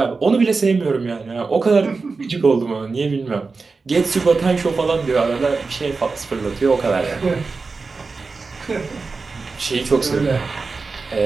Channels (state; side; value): quieter; left; 4.2 dB